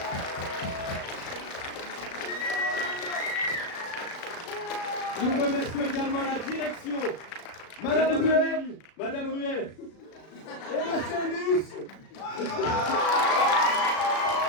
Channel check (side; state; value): right; late; 36 ms